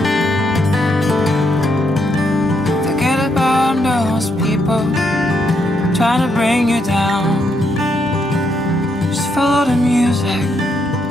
Forget about those people trying to bring you down. Just follow the music.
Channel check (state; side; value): normal; both; correlation 0.77